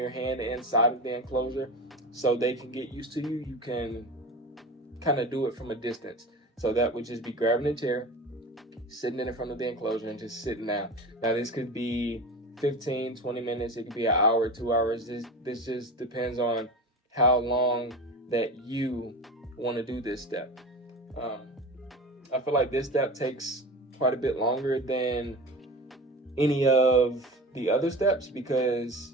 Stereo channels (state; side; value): normal; both; correlation 0.30